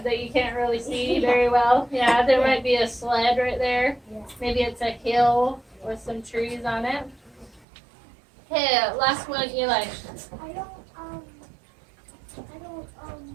that you can't really see very well. Yeah, there might be a sled right there. Yeah. Maybe it's a hill with some trees on it. Okay, last one, Eli. I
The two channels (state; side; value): drops out; left; at 7.7 s